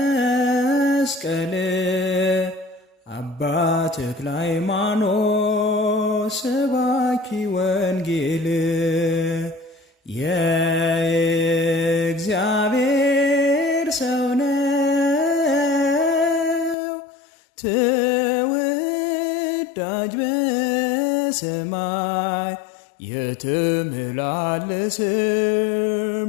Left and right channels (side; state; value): right; drops out; at 16.8 s